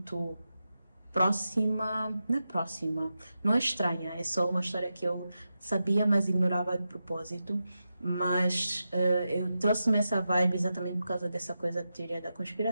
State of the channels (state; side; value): inverted; both; correlation -0.90